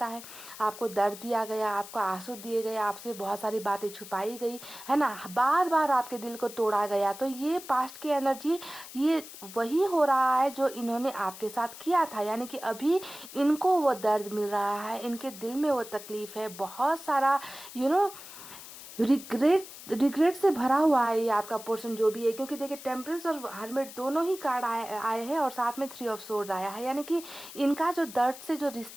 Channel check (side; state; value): left; noise; hiss, 14 dB below the sound